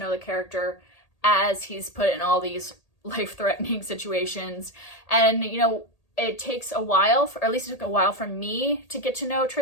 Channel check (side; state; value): right; late; 1.8 ms